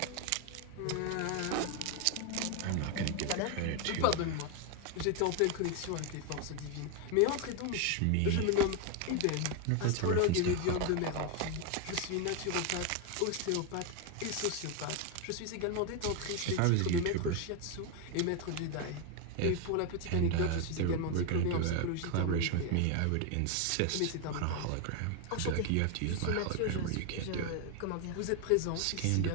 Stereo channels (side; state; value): both; different; correlation 0.01